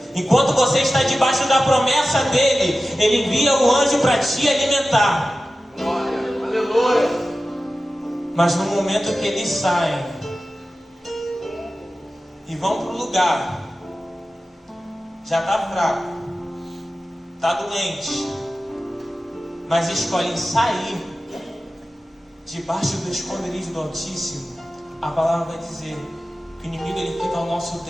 Enquanto você está debaixo da promessa dele, ele envia o anjo para te alimentar. Glória, aleluia. Mas no momento que eles saem e vão para o lugar, já está fraco, está doente, mas escolhem sair debaixo do esconderijo do Altíssimo, a palavra vai dizer que o inimigo ele fica ao nosso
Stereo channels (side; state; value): both; normal; correlation 0.94